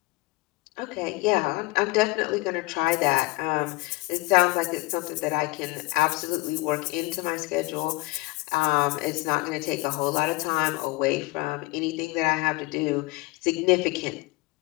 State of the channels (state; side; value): quieter; right; 23.0 dB